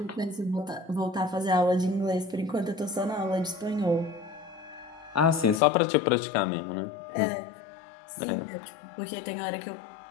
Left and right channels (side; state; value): right; drops out; at 5.6 s